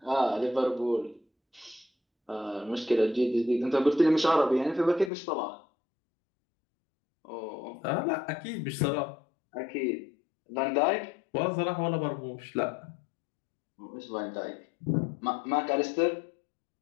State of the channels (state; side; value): drops out; right; at 5.1 s